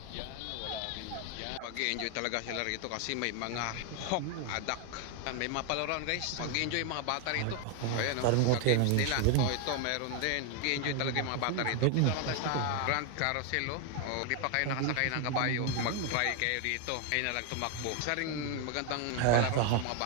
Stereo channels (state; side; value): different; both; correlation 0.01